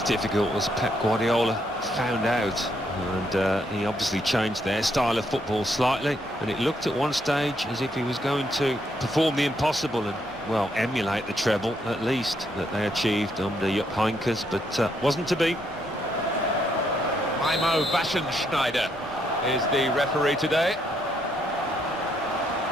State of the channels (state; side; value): normal; both; correlation 0.74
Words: difficult, as Pep Guardiola found out. And he obviously changed their style of football slightly. And it looked at one stage as if he was going to perform the impossible and, well, emulate the treble, at least, that they achieved under Jupp Heynckes, but wasn't to be. Mimo Waschenschneider is the referee today.